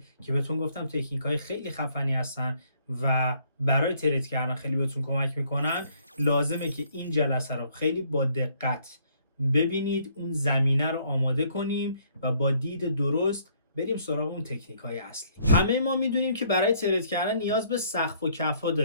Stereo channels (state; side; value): inverted; both; correlation -0.65